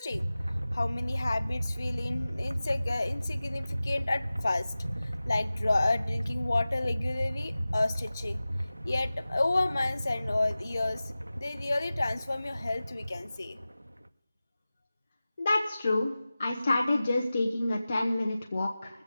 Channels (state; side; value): inverted; both; correlation -0.96